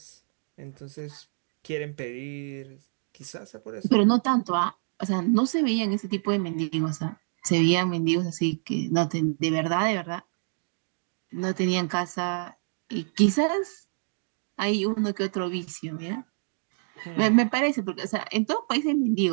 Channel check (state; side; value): silent; left; 60 dB below the other